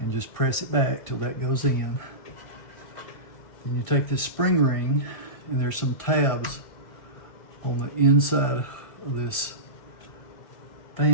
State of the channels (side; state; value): right; late; 2.1 ms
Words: just press it back till that goes in. Then you take this spring ring, and there's some tabs on the inside of this